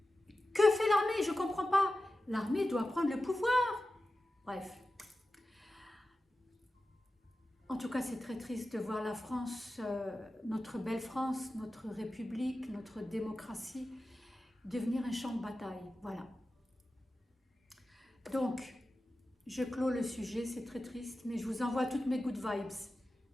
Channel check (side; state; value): both; normal; correlation 0.94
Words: Que fait l'armée? Je comprends pas. L'armée doit prendre le pouvoir. Bref. En tout cas, c'est très triste de voir la France, notre belle France, notre République, notre démocratie, devenir un champ de bataille. Voilà. Donc, je clôt le sujet, c'est très triste, mais je vous envoie toutes mes good vibes.